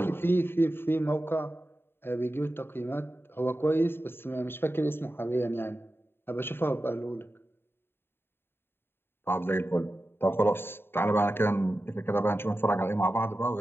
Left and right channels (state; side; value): late; right; 0.11 ms